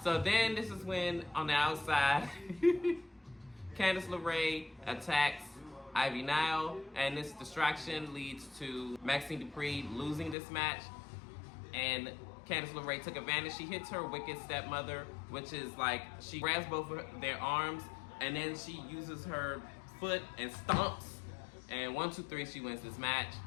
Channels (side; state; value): right; drops out; at 10.4 s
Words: So then this is when, on the outside, Candice LeRae attacks Ivy Nile, and this distraction leads to Maxine Dupree losing this match, and Candice LeRae took advantage. She hits her wicked stepmother, which is like, she grabs both of their arms, and then she uses her foot and stomps And 1, 2, 3, she wins this match.